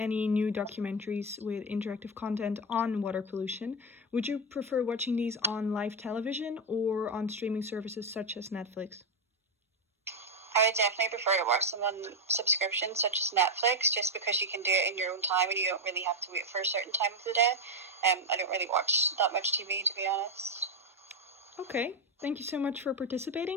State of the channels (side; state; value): both; normal; correlation 0.06